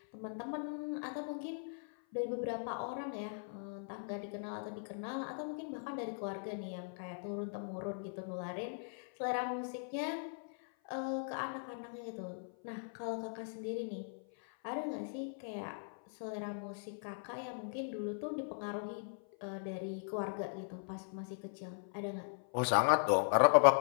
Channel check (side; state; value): right; silent; 52 dB below the other